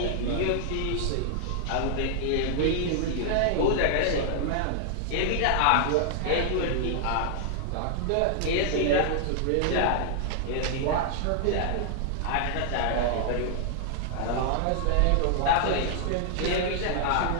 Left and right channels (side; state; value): both; different; correlation -0.01